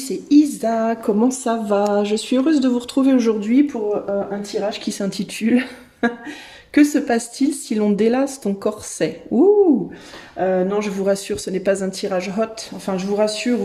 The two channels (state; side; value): identical; both; correlation 1.00